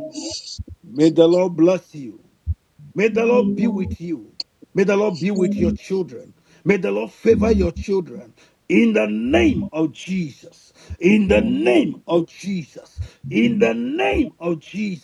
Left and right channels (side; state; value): both; identical; correlation 1.00